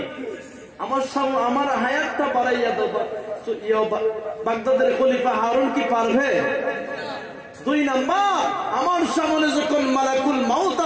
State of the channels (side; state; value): both; identical; correlation 1.00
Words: আমার হায়াতটা বাড়াইয়া দাও, বাগদাদের খলিফা হারুন কি পারবে? দুই নাম্বার আমার সামনে যখন মালাকুল মাউত